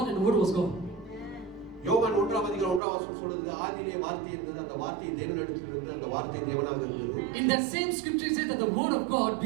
and the word was God. யோவான் 1ஆம் அதிகாரம் 1ஆம் வசனம் சொல்லுது ஆதியிலே வார்த்தை இருந்தது அந்த வார்த்தை தேவனிடத்தில் இருந்தது அந்த வார்த்தை தேவனாக இருந்தது. In that same scripture it says that the word of God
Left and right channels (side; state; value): left; drops out; at 2.8 s